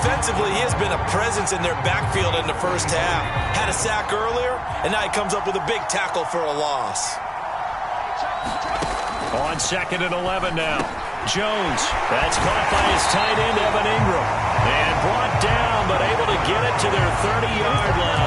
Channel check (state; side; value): identical; both; correlation 1.00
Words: he has been a presence in their backfield in the first half. Had a sack earlier, and now he comes up with a big tackle for a loss. On 2nd and 11 now. Jones. That's caught by his tight end, Evan Ingram. And brought down, but able to get it to their 30-yard